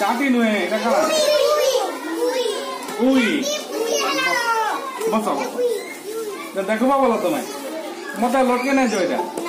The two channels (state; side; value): identical; both; correlation 1.00